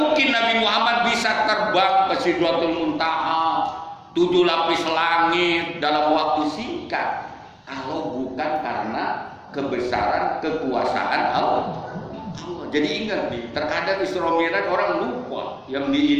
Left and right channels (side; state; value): both; identical; correlation 1.00